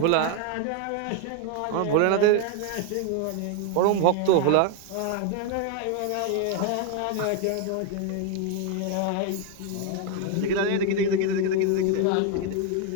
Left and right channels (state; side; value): different; both; correlation 0.01